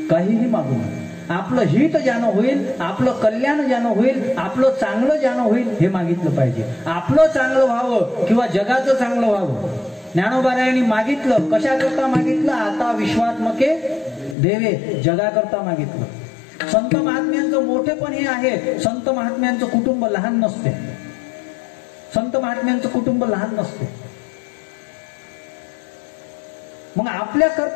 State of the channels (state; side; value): drops out; right; at 14.4 s